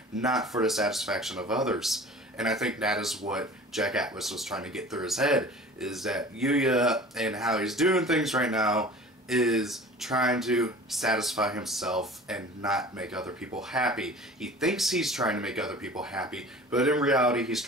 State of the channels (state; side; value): normal; both; correlation 0.42